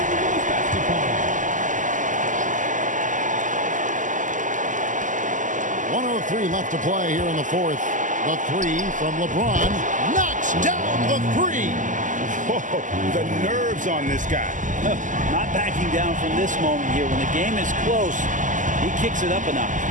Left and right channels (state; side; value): late; left; 0.37 ms